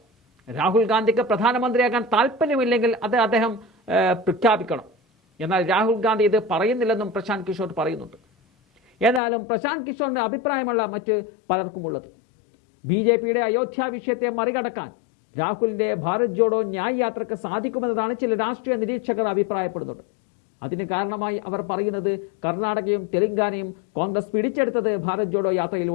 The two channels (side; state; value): right; drops out; at 9.2 s